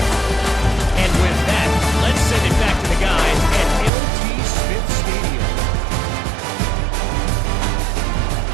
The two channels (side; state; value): left; drops out; at 3.9 s